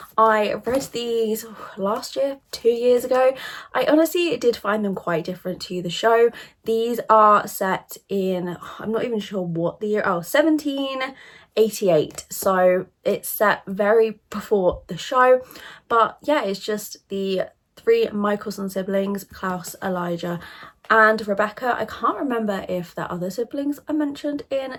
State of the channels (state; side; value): identical; both; correlation 1.00